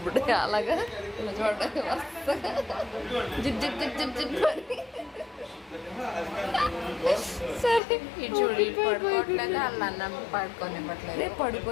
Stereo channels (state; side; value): drops out; right; at 7.8 s